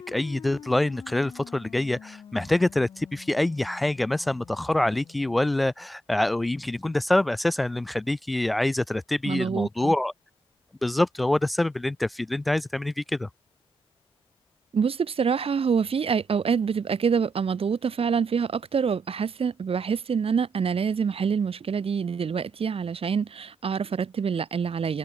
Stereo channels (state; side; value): normal; both; correlation 0.84